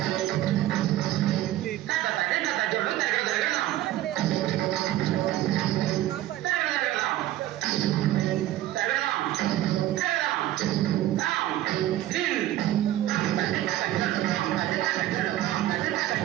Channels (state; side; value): quieter; left; 14.2 dB